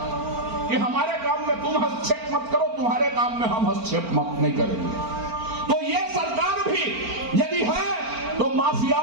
कि हमारे काम में तुम हस्तक्षेप मत करो, तुम्हारे काम में हम हस्तक्षेप मत नहीं करेंगे। तो ये सरकार भी यदि है तो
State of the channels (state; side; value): late; left; 4.4 ms